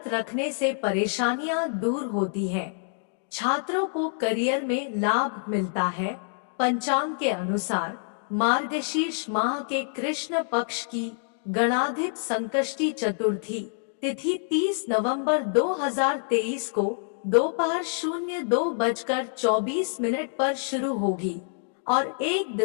रखने से परेशानियां दूर होती हैं। छात्रों को करियर में लाभ मिलता है। पंचांग के अनुसार मार्गशीर्ष माह के कृष्ण पक्ष की गणाधिप संकष्टी चतुर्थी तिथि 30 नवंबर 2023 को दोपहर 02:24 पर शुरू होगी और 1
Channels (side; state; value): right; silent; digital silence